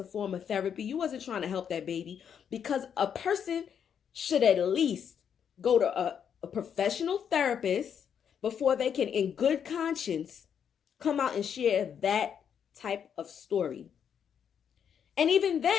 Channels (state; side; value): quieter; right; 8.0 dB